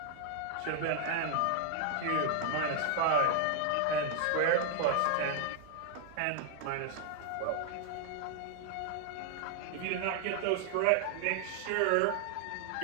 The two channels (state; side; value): different; both; correlation 0.00